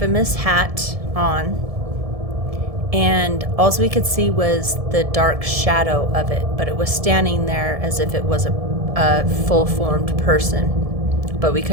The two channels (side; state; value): left; late; 1.7 ms